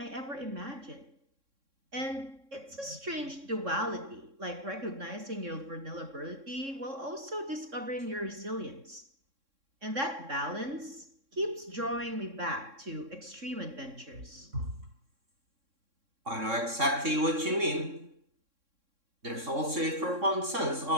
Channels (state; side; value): late; left; 3.6 ms